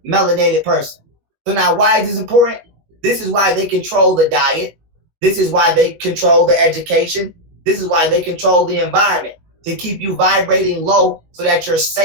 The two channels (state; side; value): late; left; 19 ms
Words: melanated person. So now why is this important? This is why they control the diet. This is why they control the education. This is why they control the environment, to keep you vibrating low so that you're